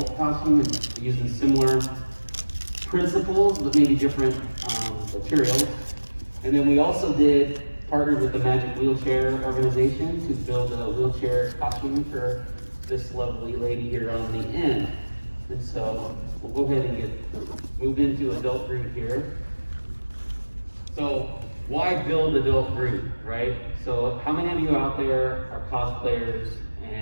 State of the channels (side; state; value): both; inverted; correlation -1.00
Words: costume, and using similar principles but maybe different materials. And then we also partnered with the Magic Wheelchair organization to build a wheelchair costume for this lovely lady here on the end. And so we'll go ahead and move into adult Groot here. So why build adult Groot, right? So how many of you out there are cosplayers